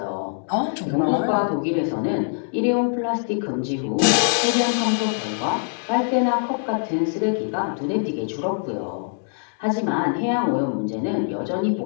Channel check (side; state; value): right; silent; digital silence